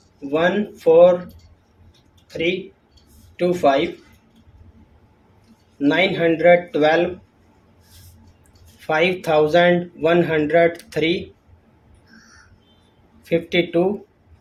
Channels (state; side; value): identical; both; correlation 1.00